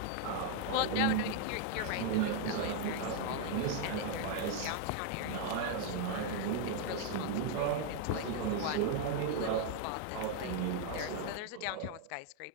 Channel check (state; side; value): different; both; correlation 0.00